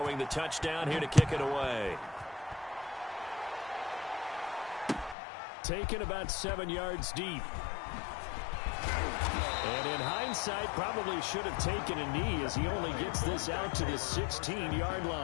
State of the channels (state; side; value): drops out; right; at 5.2 s